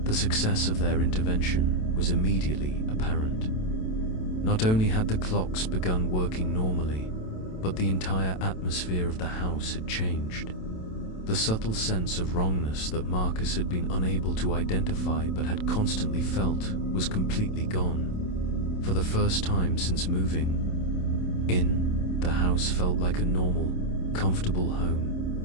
The success of their intervention was immediately apparent. Not only had the clocks begun working normally, but the entire atmosphere of the house had changed. The subtle sense of wrongness that Marcus had been unable to identify but had constantly felt was completely gone. For the first time since moving in, the house felt like a normal, comfortable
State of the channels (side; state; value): right; late; 27 ms